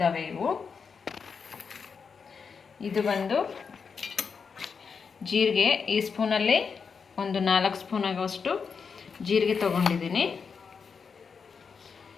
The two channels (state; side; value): quieter; right; 5.7 dB